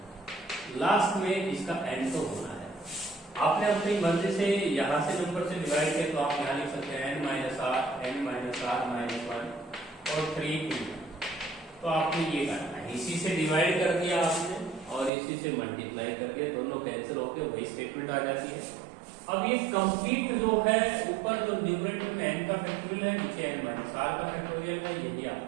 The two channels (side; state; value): left; drops out; at 15.1 s